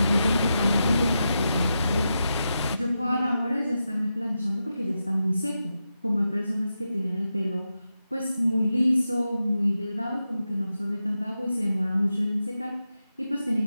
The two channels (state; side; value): inverted; both; correlation -0.88